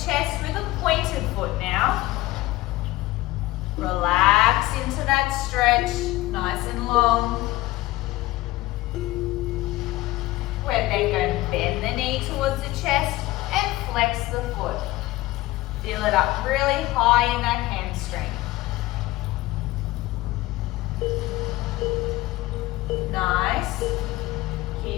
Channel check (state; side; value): quieter; right; 18.1 dB